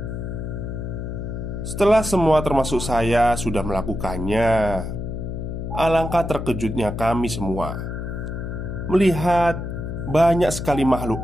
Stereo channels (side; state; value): left; noise; hum, 5 dB below the sound